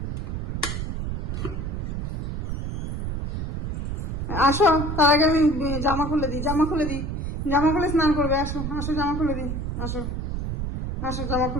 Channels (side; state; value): right; noise; rumble, 3 dB below the sound